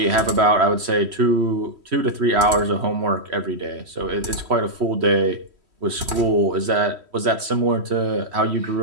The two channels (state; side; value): late; left; 3.1 ms